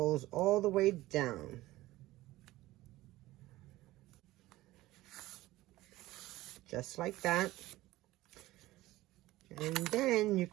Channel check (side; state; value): left; quieter; 17.3 dB